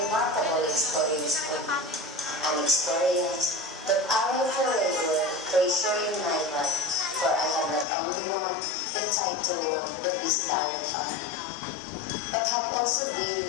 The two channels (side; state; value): right; drops out; at 7.9 s